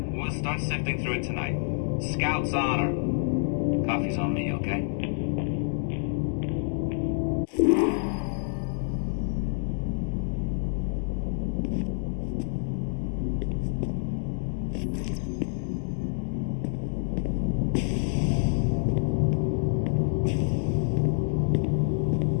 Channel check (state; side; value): silent; right; digital silence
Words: We'll start sifting through it tonight. Scout's honor. Coffee's on me, okay?